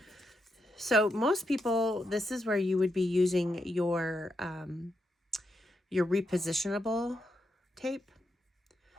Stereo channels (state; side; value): normal; both; correlation 0.83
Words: So most people, this is where you would be using your repositionable tape.